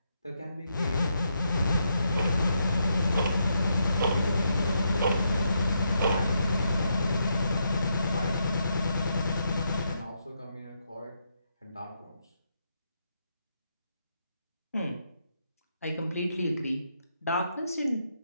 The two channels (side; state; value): both; inverted; correlation -0.80